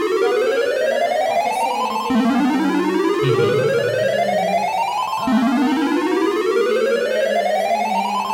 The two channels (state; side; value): identical; both; correlation 1.00